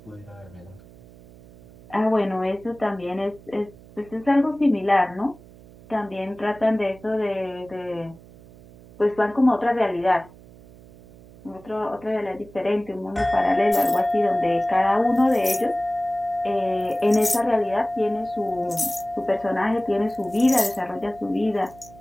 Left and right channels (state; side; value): noise; right; hum, 22 dB below the sound